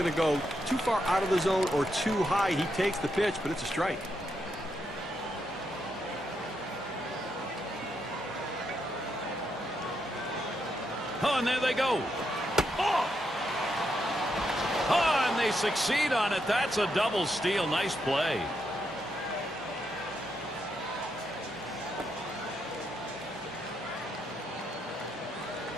to go too far out of the zone or too high. He takes the pitch, but it's a strike. Oh, and there they go. Oh! Oh, and they succeed on it. That's a double steal. Nice play.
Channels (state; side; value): normal; both; correlation 0.81